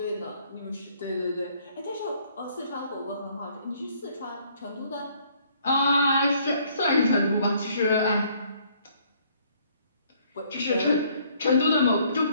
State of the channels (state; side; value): inverted; both; correlation -0.63